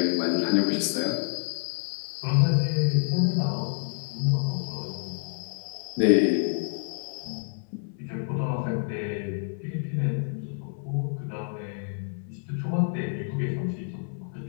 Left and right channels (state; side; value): silent; right; 59 dB below the other